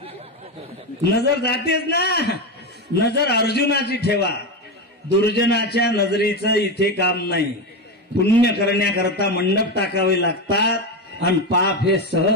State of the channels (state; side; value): normal; both; correlation 0.15